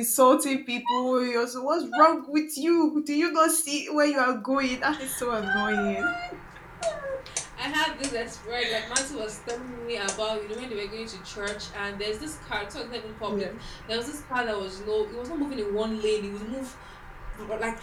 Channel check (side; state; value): both; identical; correlation 1.00